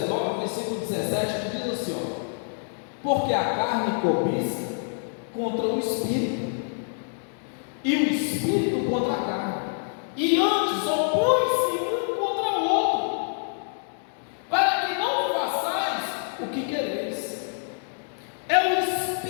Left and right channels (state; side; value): silent; right; digital silence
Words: versículo 17, que diz assim, ó: porque a carne cobiça contra o Espírito, e o Espírito contra a carne, e antes opõe-se um contra o outro, para que não façais o que quereis. É o